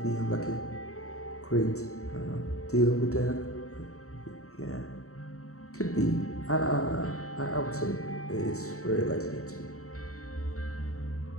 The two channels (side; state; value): right; late; 0.64 ms